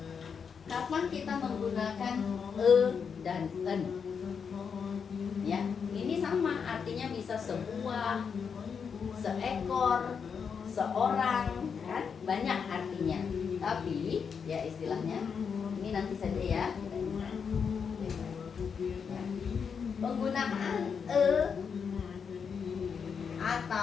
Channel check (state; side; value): quieter; right; 6.4 dB